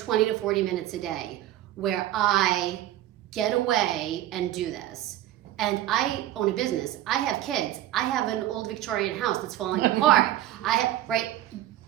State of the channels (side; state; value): left; quieter; 13.7 dB